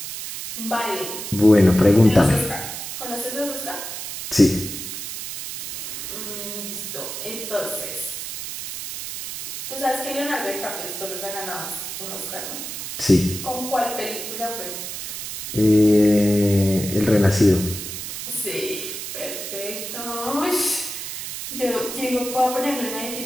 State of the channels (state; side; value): noise; right; hiss, 7 dB below the sound